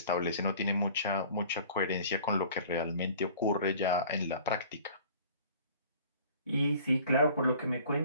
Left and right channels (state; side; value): inverted; both; correlation -0.48